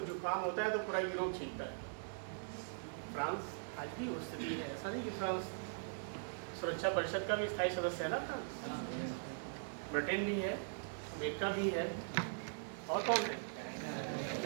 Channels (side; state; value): left; silent; digital silence